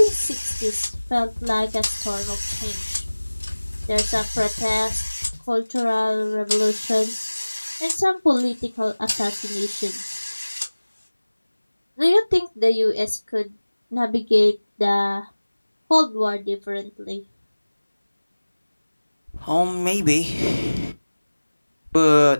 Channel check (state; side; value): inverted; both; correlation -1.00